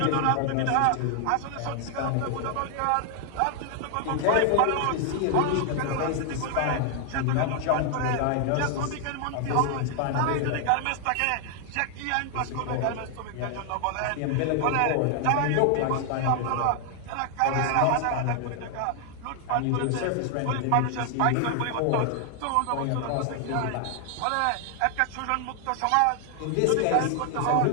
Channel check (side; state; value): both; different; correlation 0.00